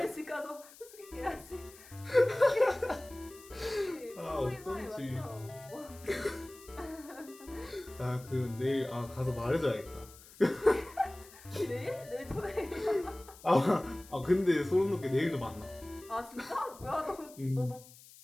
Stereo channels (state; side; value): noise; left; hiss, 21 dB below the sound